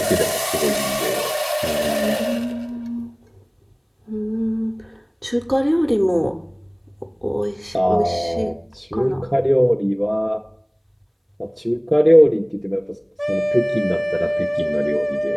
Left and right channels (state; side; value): identical; both; correlation 1.00